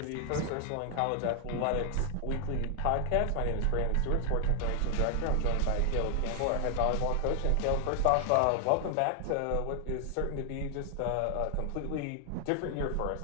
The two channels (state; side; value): different; both; correlation 0.00